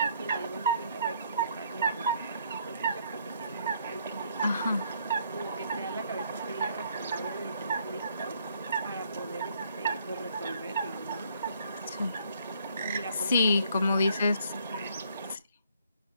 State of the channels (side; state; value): both; inverted; correlation -0.66